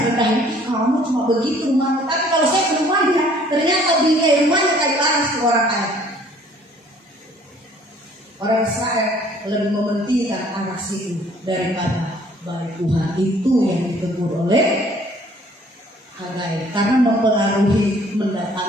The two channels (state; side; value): normal; both; correlation 0.57